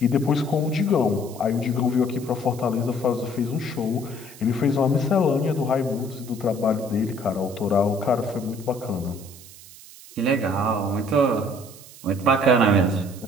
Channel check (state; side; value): noise; right; hiss, 19 dB below the sound